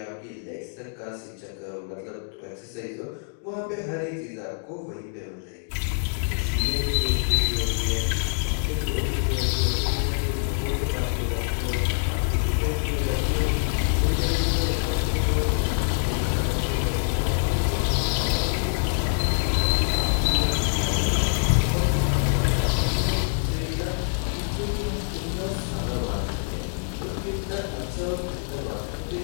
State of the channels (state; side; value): silent; right; digital silence